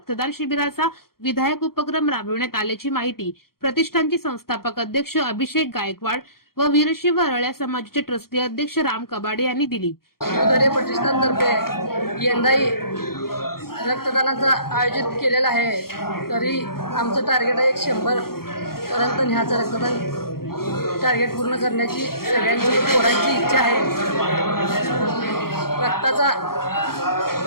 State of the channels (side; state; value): right; late; 0.93 ms